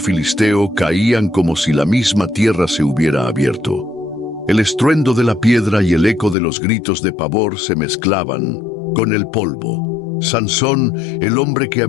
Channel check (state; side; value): drops out; right; at 6.4 s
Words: caían como si la misma tierra se hubiera abierto. El estruendo de la piedra y el eco de los gritos de pavor se mezclaban con el polvo. Sansón, el hombre que